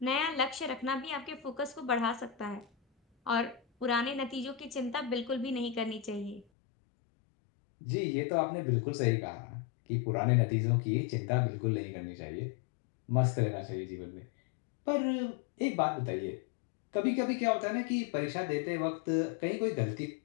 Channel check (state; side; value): drops out; right; at 6.5 s